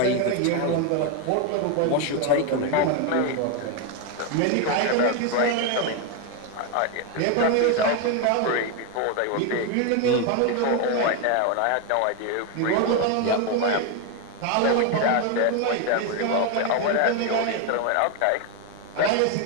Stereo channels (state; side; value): different; both; correlation 0.01